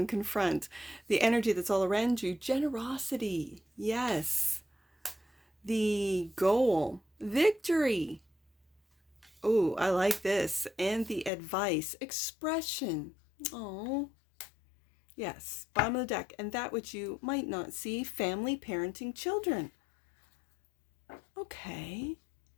confront. The energy that's all around you, generosity. Yes. The goal, victory. Oh, I like this. And the advice, expression. Oh, yes. Bottom of the deck. And that which you might not see, family, parenting, children. Okay.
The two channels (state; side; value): drops out; right; at 11.3 s